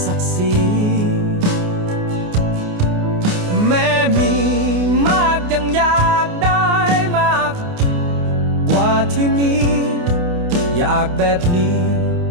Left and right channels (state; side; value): late; left; 28 ms